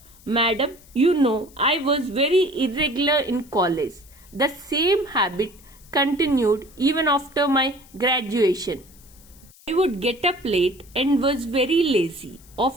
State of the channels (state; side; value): noise; left; hiss, 25 dB below the sound